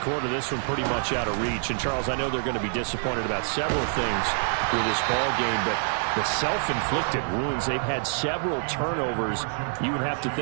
quarter, this one pretty much out of reach. And, Charles, I know they're going to be disappointed about several things with this ball game, but the self-inflicted wounds, they've had several turnovers. You would have to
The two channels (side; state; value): left; silent; 61 dB below the other